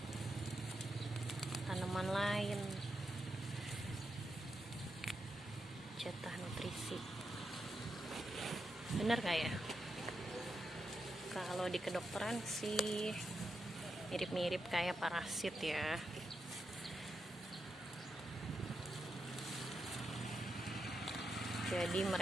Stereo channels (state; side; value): normal; both; correlation 0.85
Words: tanaman lain, jatah nutrisi. Bener gak ya? Kalau di kedokteran sih mirip-mirip kayak parasit ya. Jadi